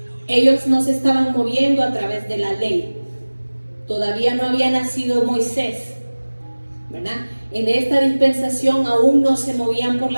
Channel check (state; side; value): inverted; both; correlation -1.00